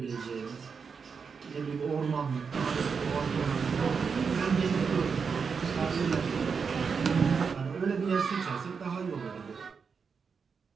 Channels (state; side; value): quieter; left; 5.7 dB